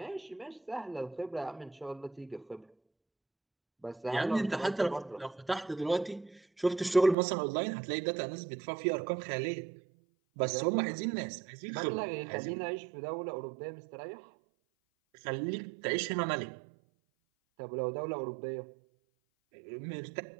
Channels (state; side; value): drops out; left; at 7.2 s